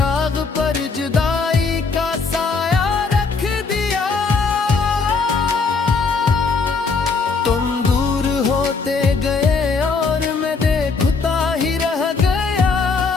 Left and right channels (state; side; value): quieter; right; 4.6 dB